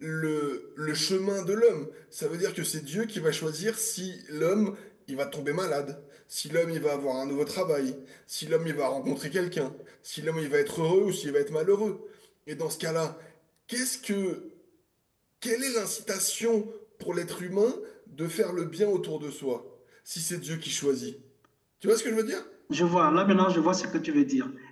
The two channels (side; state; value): both; identical; correlation 1.00